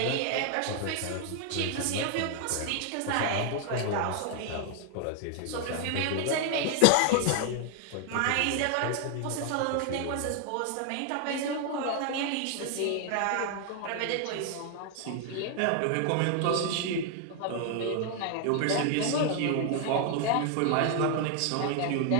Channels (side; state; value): both; different; correlation 0.00